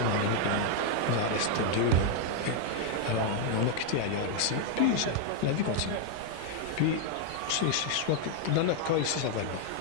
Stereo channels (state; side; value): different; both; correlation 0.00